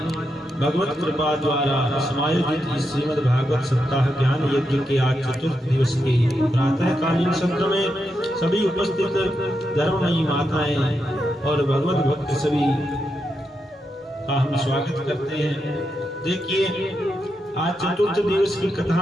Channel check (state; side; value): normal; both; correlation 0.85